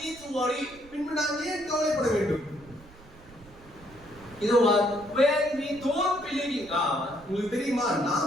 need to worry? பின்பு நாம் ஏன் கவலைப்பட வேண்டும்? You know what? When we don't believe in God, உங்களுக்கு தெரியுமா,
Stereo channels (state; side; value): noise; right; rumble, 22 dB below the sound